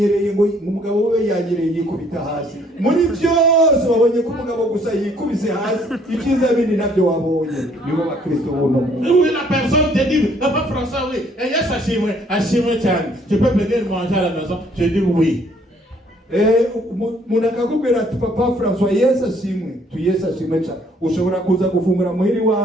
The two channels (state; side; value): normal; both; correlation 0.63